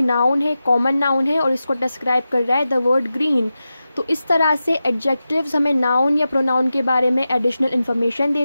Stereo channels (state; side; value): inverted; both; correlation -0.92